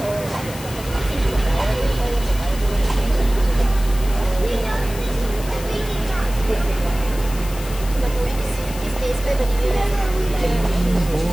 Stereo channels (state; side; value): noise; left; hiss, 14 dB below the sound